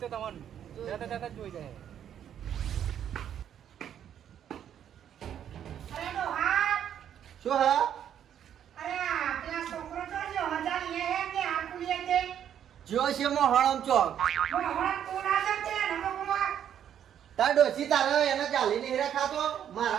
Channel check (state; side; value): quieter; left; 9.6 dB